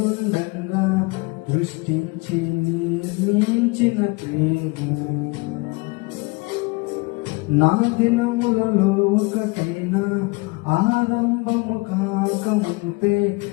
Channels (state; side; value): quieter; right; 26.3 dB